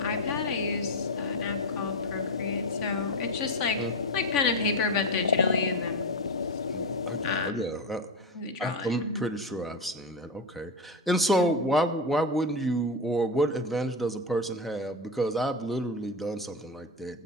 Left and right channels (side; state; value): both; normal; correlation 0.15